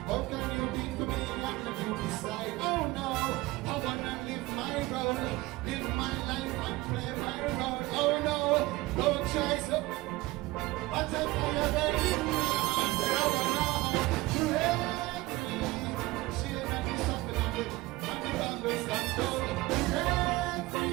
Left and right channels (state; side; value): quieter; left; 20.0 dB